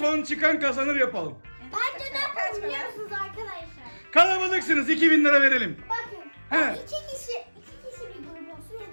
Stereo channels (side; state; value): both; inverted; correlation -1.00